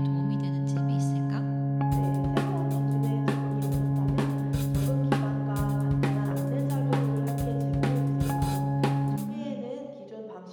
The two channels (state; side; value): identical; both; correlation 1.00